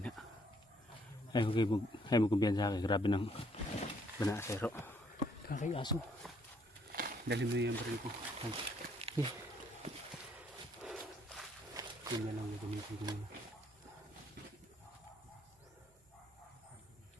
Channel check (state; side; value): normal; both; correlation 0.67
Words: Ay mo kumpiyansa kay grabe ng banasero. Kakay aso. Dali mo yung baril ko. Yun na lang yung gamitin ko muna.